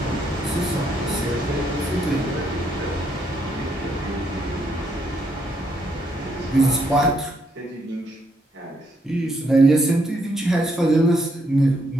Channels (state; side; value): normal; both; correlation 0.74